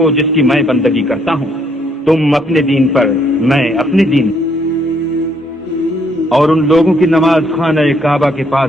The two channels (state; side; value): normal; both; correlation 0.69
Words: جس کی میں بندگی کرتا ہوں، تم اپنے دین پر میں اپنے دین۔ اور ان لوگوں کی نماز خانہ کعبہ کے پاس